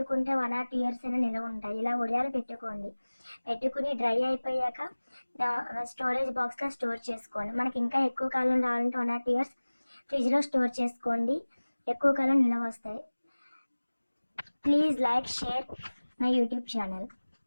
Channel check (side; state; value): both; inverted; correlation -1.00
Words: 1 or 2 years అయినా నిల్వ ఉంటాయి. ఇలా ఒడియాలు పెట్టుకుని డ్రై అయిపోయాక స్టోరేజ్ బాక్స్లో స్టోర్ చేసుకోండి. మనకి ఇంకా ఎక్కువ కాలం రావాలంటే 1 or 2 years ఫ్రిడ్జ్లో స్టోర్ చేసుకోండి. ఎక్కువ కాలం నిల్వ వస్తాయి. Please like, share my YouTube channel.